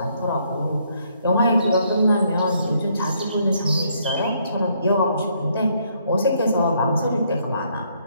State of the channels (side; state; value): both; inverted; correlation -0.70